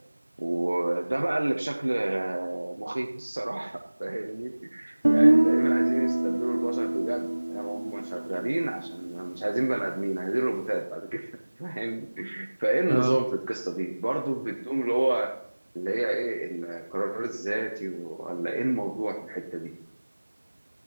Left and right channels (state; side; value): inverted; both; correlation -1.00